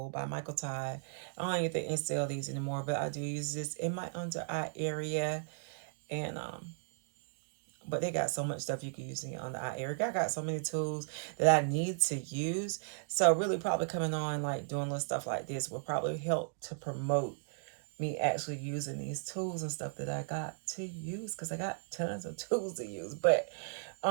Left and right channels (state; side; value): silent; left; digital silence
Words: by Michael Todd. I don't even think they sell these anymore, but I do use this in my under eye area. And But they got so much stuff you can use on the eye area. I got so many tools that I need to use. So really probably coming on, like doing little stuff like this will probably help to promote me actually using these tools and stuff that I got to use, because I got tons of tools to use. But